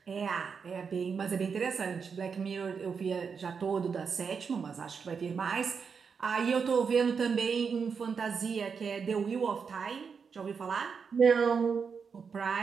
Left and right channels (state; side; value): quieter; left; 5.9 dB